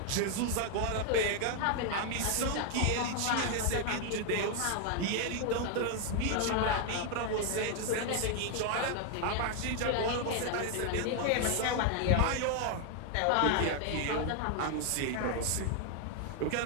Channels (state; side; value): different; both; correlation 0.00